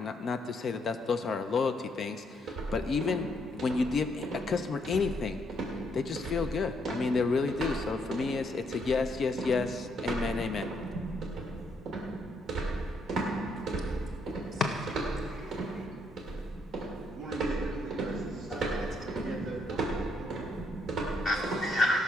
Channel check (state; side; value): normal; both; correlation 0.73